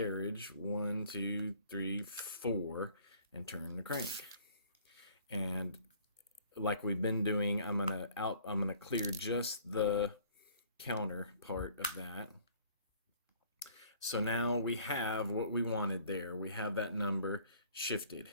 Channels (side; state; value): both; inverted; correlation -0.55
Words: 1, 2, 3, 4, and turn the crank. And like we've been doing, I'm gonna clear just the counter part of that. So now we have what we wanted there. We have that number shifted.